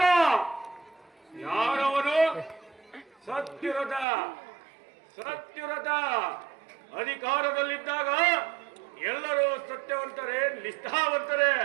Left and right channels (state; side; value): drops out; left; at 4.0 s